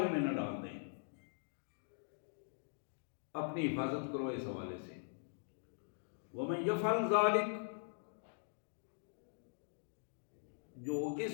میں نہ ڈال دیں. اپنی حفاظت کرو اس حوالے سے. وَمَن يَفْعَلْ ذَلِكَ، جو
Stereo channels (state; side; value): silent; right; digital silence